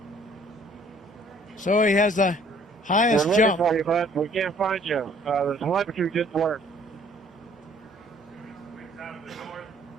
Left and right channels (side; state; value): both; normal; correlation 0.58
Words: So he has the highest We're looking jump. for you, bud. We can't find you. The telemetry didn't work.